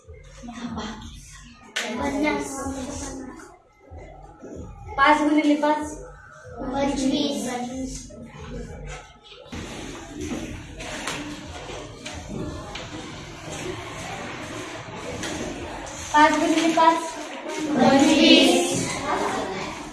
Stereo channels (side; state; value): both; identical; correlation 1.00